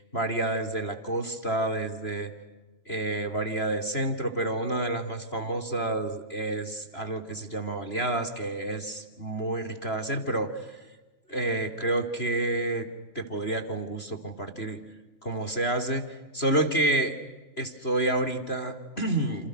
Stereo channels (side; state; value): right; late; 3.0 ms